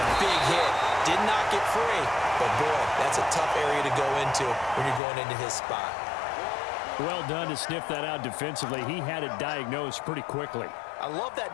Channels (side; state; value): right; drops out; at 5.0 s